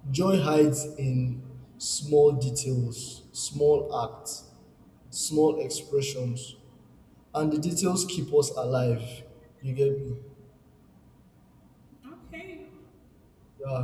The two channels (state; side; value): identical; both; correlation 1.00